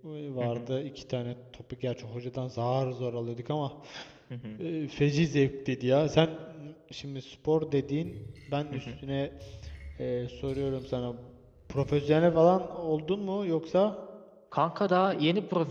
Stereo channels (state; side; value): identical; both; correlation 1.00